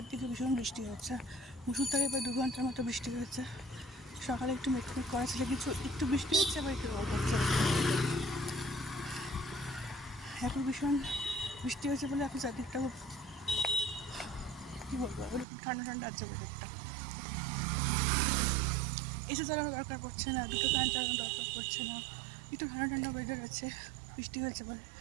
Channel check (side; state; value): left; drops out; at 15.5 s